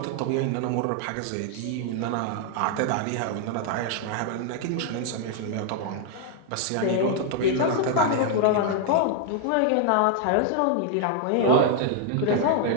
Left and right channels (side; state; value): both; different; correlation 0.00